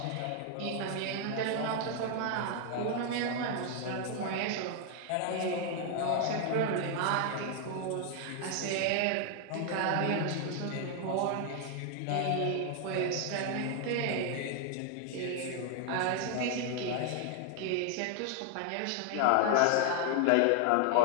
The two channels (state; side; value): different; both; correlation 0.00